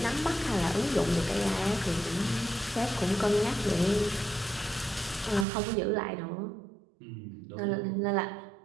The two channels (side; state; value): left; drops out; at 5.5 s